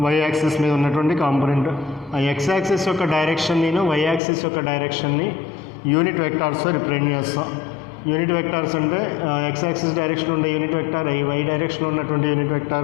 వై యాక్సిస్ మీద ఉన్నటువంటి కాంపనెంట్. ఆ ఎక్స్ యాక్సిస్ యొక్క డైరెక్షన్ని, వై యాక్సిస్ యొక్క డైరెక్షన్ని యూనిట్ వెక్టార్స్తో రిప్రజెంట్ చేస్తాం. యూనిట్ వెక్టార్స్ అంటే ఎక్స్ యాక్సిస్ డైరెక్షన్ ఉండే యూనిట్ వెక్టార్ ఐ, వై డైరెక్షన్లో ఉన్నటువంటి యూనిట్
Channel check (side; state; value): right; drops out; at 4.2 s